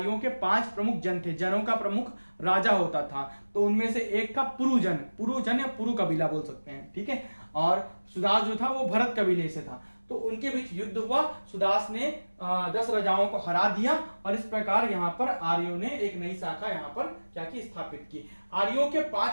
के 5 प्रमुख जन थे, जनों का प्रमुख राजा होता था। तो उनमें से एक था पुरुजन या पुरु कबीला बोल सकते हैं। ठीक है, और सुदास जो था वो भरत कबीले से था। तो उनके बीच युद्ध हुआ, सुदास ने 10 राजाओं को हरा दिया और इस प्रकार यहाँ पर आर्यों ने एक नई शाखा यहाँ पर क्या की, स्थापित की। आर्यों के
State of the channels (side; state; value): both; inverted; correlation -1.00